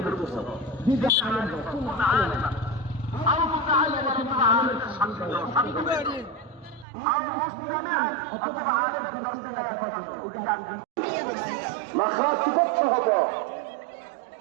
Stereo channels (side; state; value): left; drops out; at 6.9 s